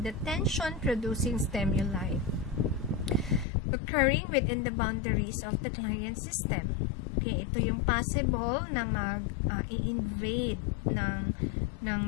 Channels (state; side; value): drops out; right; at 3.5 s